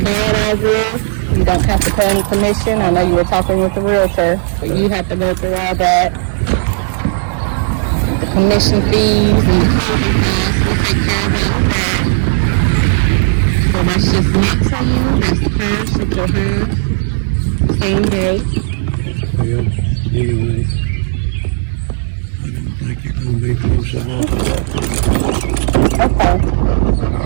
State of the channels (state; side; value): silent; left; digital silence